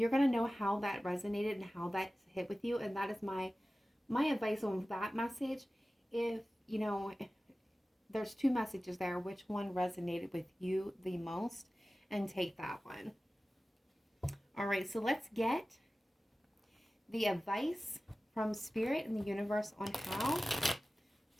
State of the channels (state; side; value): normal; both; correlation 0.96